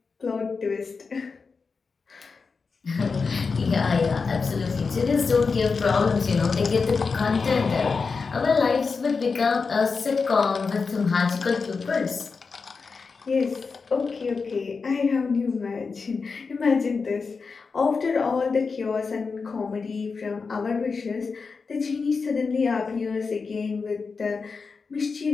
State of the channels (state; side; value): quieter; right; 4.8 dB